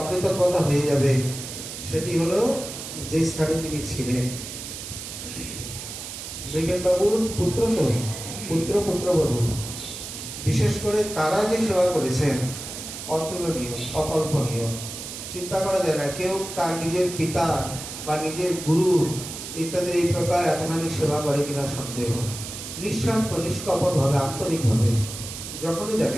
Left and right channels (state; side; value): noise; right; hiss, 9 dB below the sound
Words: হয়ে যাবে। সেটি হলো যে স্থানে তিনি ছিলেন। মৃগেন বাবুর পুত্র তো পুত্রবধূ, বিশেষ করে তারা যে সেবা করেছেন অতুলনীয়, অকল্পনীয়। চিন্তা করা যায় না কেউ তার নিজের পিতা বা নিজের গুরু ইত্যাদি এই প্রকার এতখানি সেবা করে কিনা সন্দেহ। নিঃস্বার্থ, নিষ্কপট ভাবে, আন্তরিক ভাবে। যখনই